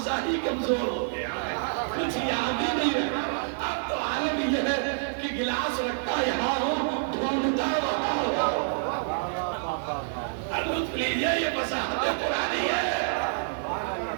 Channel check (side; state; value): left; silent; digital silence